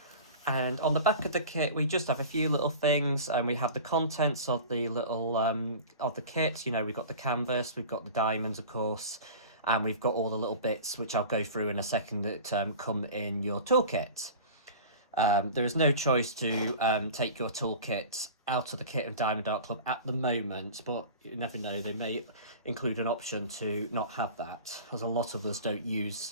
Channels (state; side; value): inverted; both; correlation -0.36